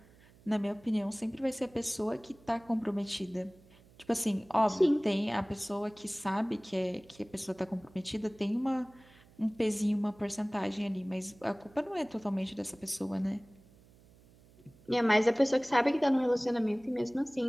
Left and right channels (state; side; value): noise; right; hum, 26 dB below the sound